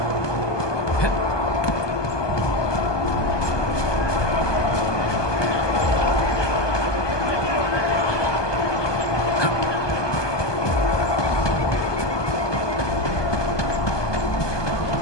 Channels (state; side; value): late; right; 1.2 ms